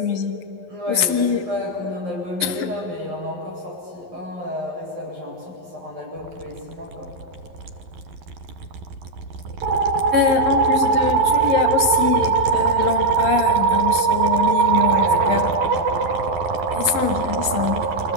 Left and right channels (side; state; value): left; late; 11 ms